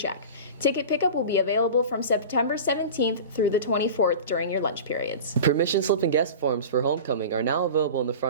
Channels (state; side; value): inverted; both; correlation -0.33